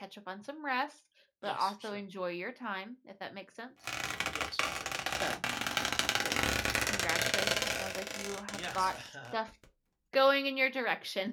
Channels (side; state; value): both; identical; correlation 1.00